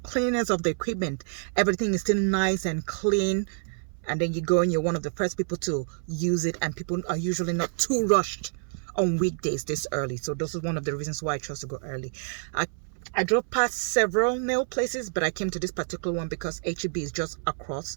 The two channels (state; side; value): silent; left; 60 dB below the other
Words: cleanliness of the equipment, everything is still nice and clean. And then you go and you're one of the first people to use it, and people are usually not too rushed on weekdays this early. So this is one of the reasons why I chose to go early. I drove past several nail places, but I came to this particular one because H-E-B is just across,